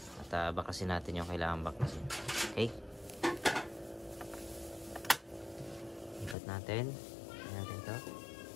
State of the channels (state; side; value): drops out; right; at 6.4 s